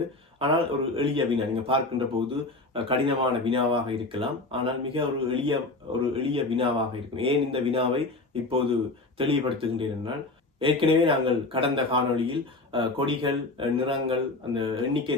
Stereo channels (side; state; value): right; quieter; 3.1 dB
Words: ஆனால் ஒரு எளிய வினா, நீங்கள் பார்க்கின்ற போது கடினமான வினாவாக இருக்கலாம். ஆனால் மிக ஒரு எளிய வினாவாக இருக்கும். ஏன் இந்த வினாவை இப்போது தெளிவுபடுத்துகின்றேன் என்றால், ஏற்கனவே நாங்கள் கடந்த காணொளியில் கொடிகள், நிறங்கள், அந்த எண்ணிக்கை